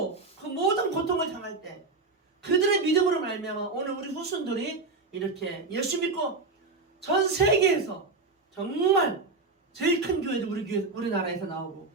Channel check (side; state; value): left; quieter; 3.7 dB